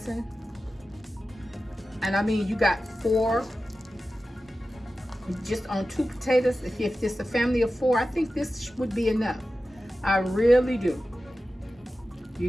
And I mean, you got 4 just on 2 potatoes. If it's a family of 4, I think this would be enough. I really do. You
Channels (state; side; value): normal; both; correlation 0.94